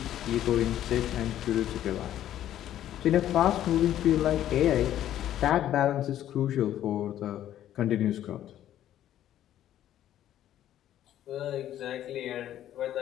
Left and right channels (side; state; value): right; quieter; 11.9 dB